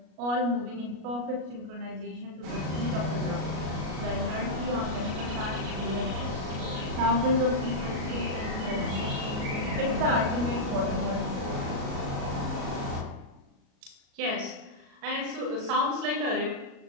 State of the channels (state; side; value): late; left; 37 ms